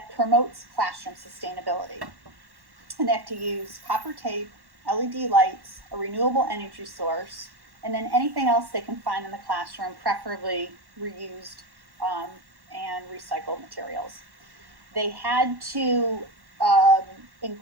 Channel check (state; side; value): late; left; 1.1 ms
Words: promotes classroom sustainability. And they have to use copper tape, LED lights, a renewable energy source, and then anything else they can find in the classroom, preferably reused and recycled materials. They had to